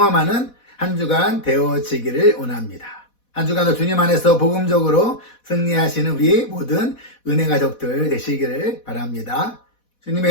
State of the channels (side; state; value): right; late; 4.1 ms